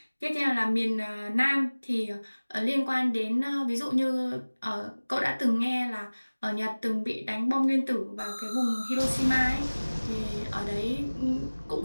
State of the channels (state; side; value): inverted; both; correlation -1.00